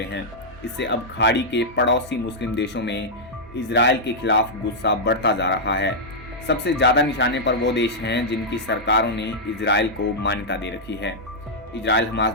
हैं। इससे अब खाड़ी के पड़ोसी मुस्लिम देशों में इजराइल के खिलाफ गुस्सा बढ़ता जा रहा है। सबसे ज्यादा निशाने पर वो देश हैं जिनकी सरकारों ने इजराइल को मान्यता दे रखी है। इजराइल हमास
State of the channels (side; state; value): both; normal; correlation -0.07